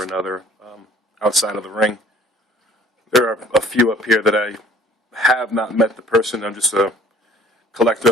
another outside of the ring. There are a few up here that I have not met the person. I'm just a collector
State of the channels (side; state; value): both; normal; correlation 0.54